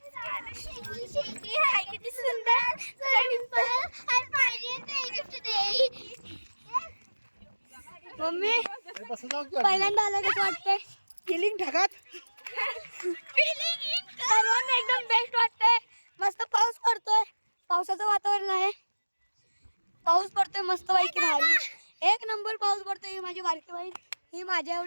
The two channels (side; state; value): both; inverted; correlation -1.00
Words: किती सुंदर. मम्मी पहिल्यांदा आलं कसं वाटतंय? फिलिंग ढगात. सर्वांना एकदम बेस्ट वाटतंय. मस्त पाऊस पडतोय, पावसाचं वातावरण आहे. पाऊस पडतोय मस्त पैकी भारी, एक नंबर पाऊस पडतोय. ही माझी बारकी बहीण, ही माझ्या